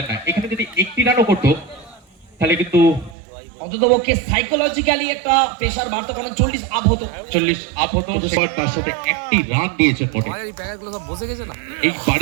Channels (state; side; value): drops out; left; at 3.2 s